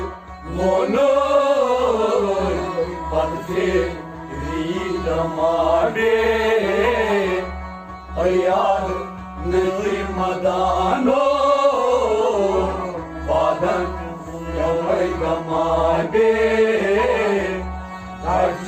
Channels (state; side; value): identical; both; correlation 1.00